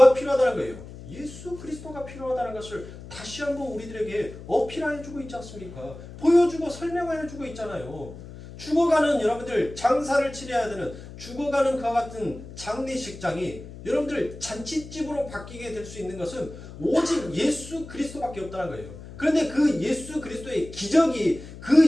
필요하다는 거예요? 예수 그리스도가 필요하다는 것을 다시 한번 우리들에게 어필해주고 있지 않습니까? 보여주고 설명해주고 있잖아요. 죽어가는 여러분들 장사를 치러야 되는 죽어가는 그와 같은 장례식장이 여러분들 잔치집으로 바뀌게 될 수 있는 것은 오직 예수 그리스도밖에 없다는 거예요. 그런데 그 예수 그리스도의 기적이 그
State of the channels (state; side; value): noise; left; hum, 15 dB below the sound